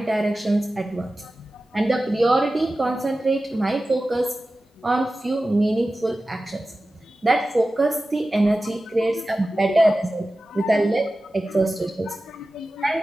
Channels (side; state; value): both; normal; correlation 0.95